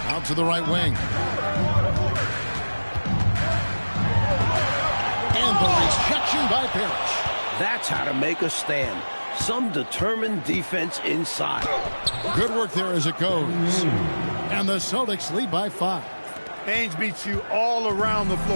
Out to the right wing. And the rejection by Parrish. That's how to make a stand. Some determined defense inside. Good work there as it goes. And the Celtics lead by 5. Ainge beats you all around the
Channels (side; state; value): both; inverted; correlation -1.00